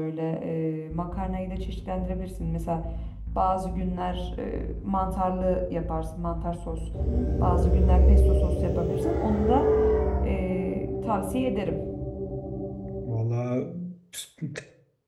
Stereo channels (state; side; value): identical; both; correlation 1.00